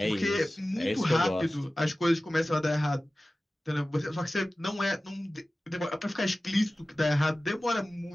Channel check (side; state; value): both; normal; correlation 0.96